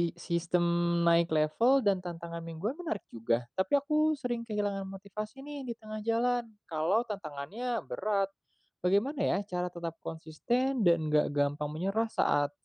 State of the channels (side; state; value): both; identical; correlation 1.00